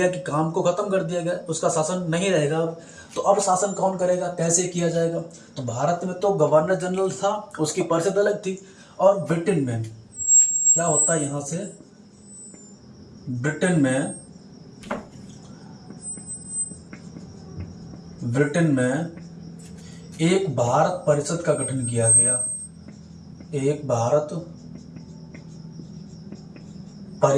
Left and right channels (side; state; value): both; identical; correlation 1.00